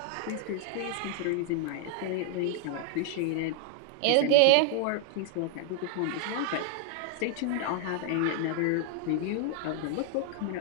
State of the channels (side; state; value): both; different; correlation 0.00